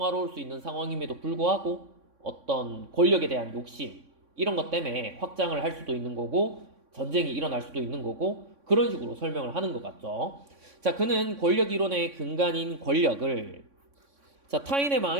수 있는 상황임에도 불구하고 어떤 권력에 대한 욕심 이런 것 때문에 확장을 할 수도 있는 거고 전쟁이 일어날 수도 있는 거고 그런 식으로 설명을 하는 것 같죠. 자, 그는 권력 이론의 근간인 권력을 타인의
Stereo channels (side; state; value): left; late; 3.6 ms